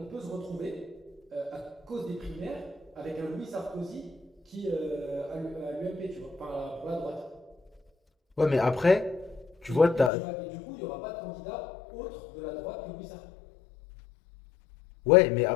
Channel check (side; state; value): right; drops out; at 10.1 s